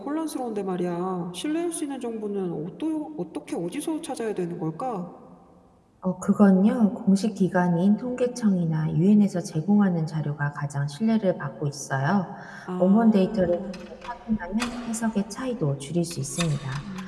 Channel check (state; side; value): identical; both; correlation 1.00